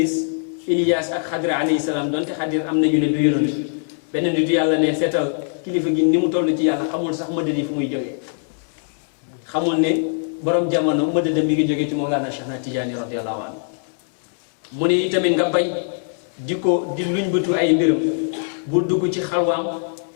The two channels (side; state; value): right; silent; digital silence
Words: Ilias ak Xadir alayhi salaam donte Xadir am nañu ne du yonent benn nitu yàlla ne seetal kilifa gi ni mu toll ci yàlla xamul sax mëdët yi fu muy jógee xamul ne borom jamono mëdëdëm mi ngi jógee ci Mawlana Cheikh na Tijaani radiyallahu anhu mu ne itamit nga bañ di luñ bëtu ay mbiram bu dugg ci xalwaam